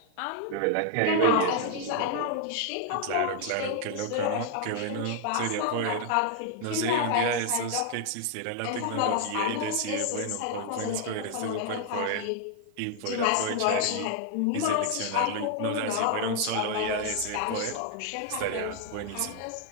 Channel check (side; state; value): both; different; correlation 0.00